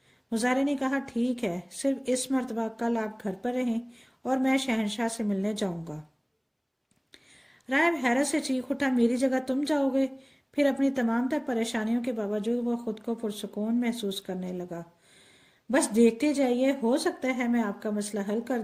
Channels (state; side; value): identical; both; correlation 1.00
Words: مزارے نے کہا، ٹھیک ہے، صرف اس مرتبہ کل آپ گھر پر رہیں اور میں شہنشاہ سے ملنے جاؤں گا۔ راہب حیرت سے چیخ اٹھا، میری جگہ تم جاؤ گے؟ پھر اپنی تمام تر پریشانیوں کے باوجود وہ خود کو پرسکون محسوس کرنے لگا۔ بس دیکھتے جائیے، ہو سکتا ہے میں آپ کا مسئلہ حل کر